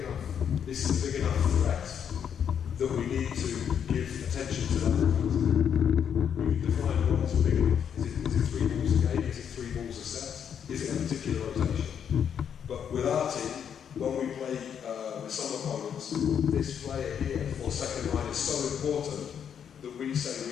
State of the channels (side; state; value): right; quieter; 8.2 dB